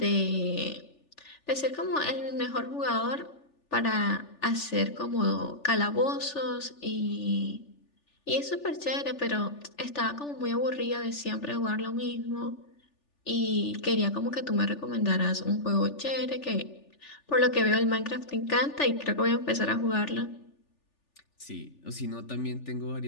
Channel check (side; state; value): right; late; 3.4 ms